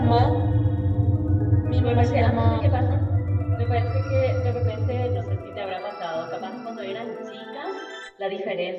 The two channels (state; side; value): identical; both; correlation 1.00